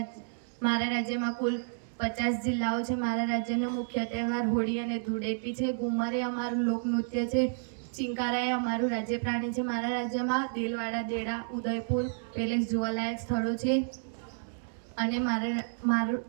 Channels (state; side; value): silent; left; digital silence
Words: મારા રાજ્યમાં કુલ 50 જિલ્લાઓ છે. મારા રાજ્યનો મુખ્ય તહેવાર હોળી અને ધૂળેટી છે. ઘુમર એ અમારું લોકનૃત્ય છે. ચિંકારા એ અમારું રાજ્ય પ્રાણી છે. મારા રાજ્યમાં દેલવાડા, દેડા, ઉદયપુર પેલેસ જોવાલાયક સ્થળો છે. અને